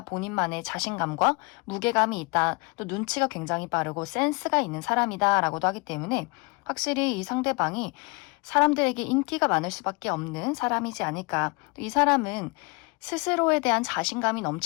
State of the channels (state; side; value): quieter; right; 28.9 dB